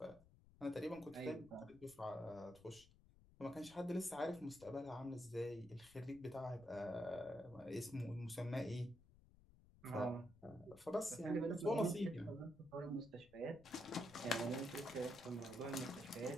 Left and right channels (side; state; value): left; noise; rumble, 23 dB below the sound